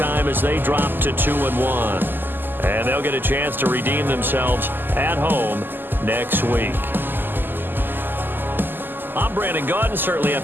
as they dropped to 2-1. And they'll get a chance to redeem themselves at home next week. I'm Brandon Gaudin. Certainly have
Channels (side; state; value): left; late; 0.093 ms